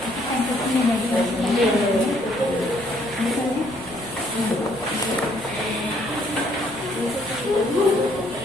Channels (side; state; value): right; noise; rumble, 21 dB below the sound